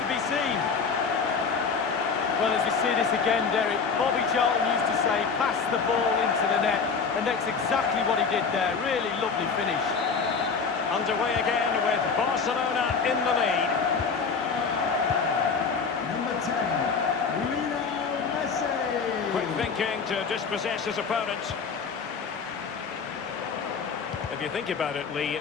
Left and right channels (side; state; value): right; quieter; 5.4 dB